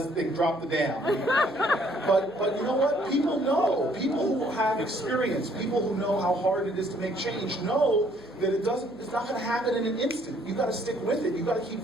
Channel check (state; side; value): noise; left; hum, 25 dB below the sound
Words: they dropped the dam. But you know what? People know. People who have experience, people who know how hard it is to make change, know that it's not going to happen in an instant. You got to stick with it. You got to keep